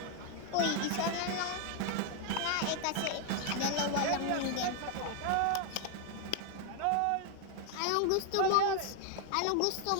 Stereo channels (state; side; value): different; both; correlation 0.00